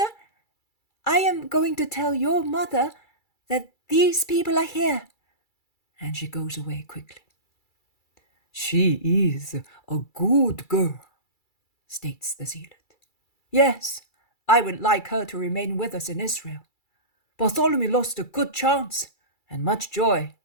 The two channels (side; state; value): right; late; 2.3 ms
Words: I am going to tell your mother that these people are here. And she goes away quickly. She is a good girl, states the zealot. Yes, I would like her to remain with us in Israel. Bartholomew lost a good chance and much joy